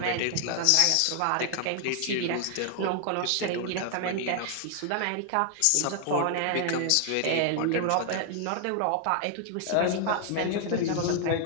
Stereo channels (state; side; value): different; both; correlation 0.00